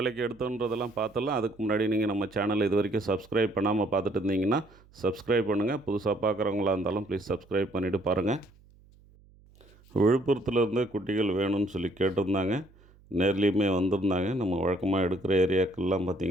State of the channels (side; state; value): right; noise; hum, 27 dB below the sound